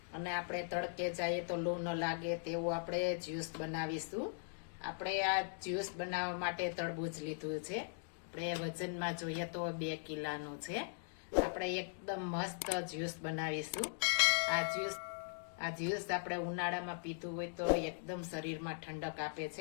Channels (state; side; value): silent; right; digital silence